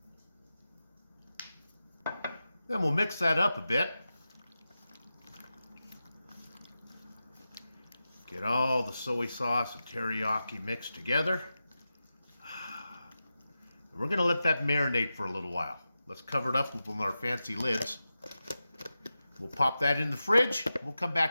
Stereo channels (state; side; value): inverted; both; correlation -0.92